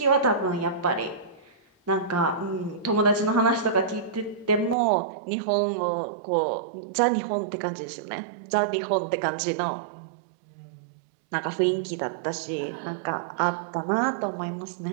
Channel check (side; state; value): left; drops out; at 4.8 s